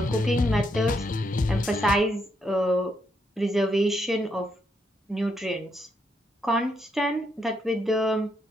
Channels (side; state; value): both; normal; correlation 0.78